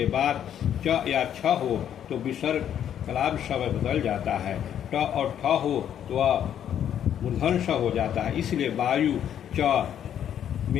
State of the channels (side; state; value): right; quieter; 9.7 dB